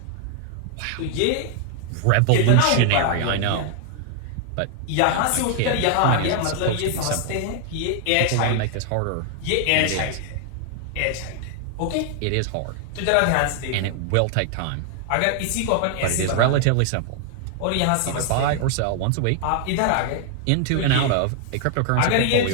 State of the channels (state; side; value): different; both; correlation 0.00